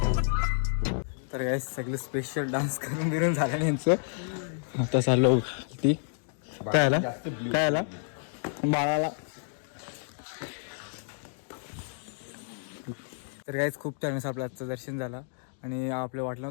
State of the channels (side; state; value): right; silent; digital silence